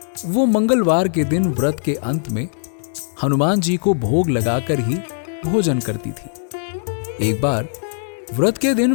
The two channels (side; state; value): right; silent; digital silence